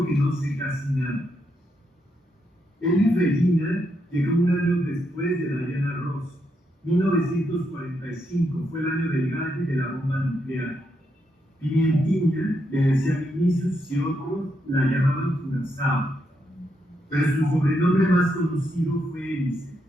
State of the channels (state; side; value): normal; both; correlation 0.80